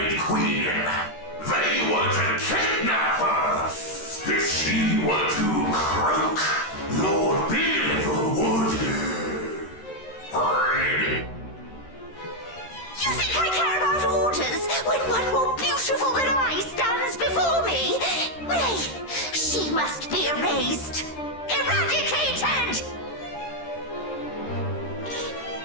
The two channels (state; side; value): late; right; 13 ms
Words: Queen. They were to kidnap her. If she were to croak, Lord Beale would... You think I care about orders when one more beautiful than I stands before me? Nay, she must be erased. Eradicated!